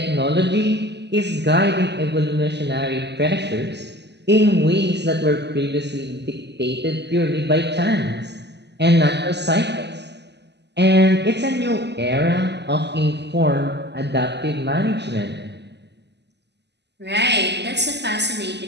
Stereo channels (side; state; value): left; late; 0.50 ms